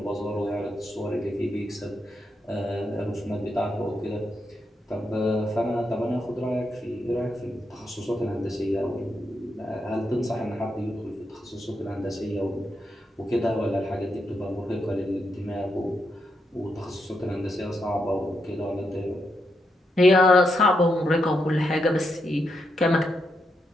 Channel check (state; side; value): normal; both; correlation 0.82